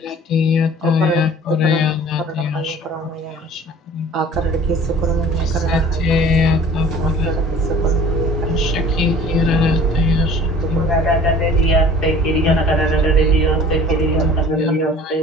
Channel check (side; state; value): both; normal; correlation 0.47